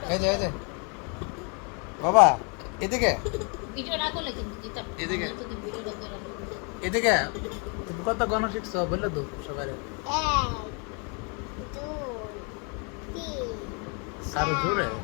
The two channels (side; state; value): right; quieter; 35.8 dB